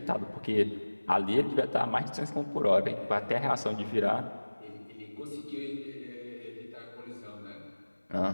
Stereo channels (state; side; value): inverted; both; correlation -1.00